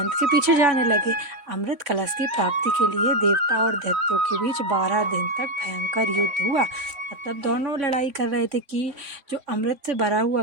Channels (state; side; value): late; left; 3.6 ms